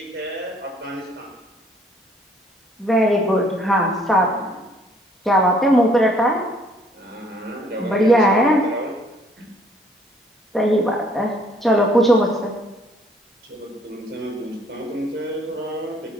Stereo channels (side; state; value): both; normal; correlation 0.62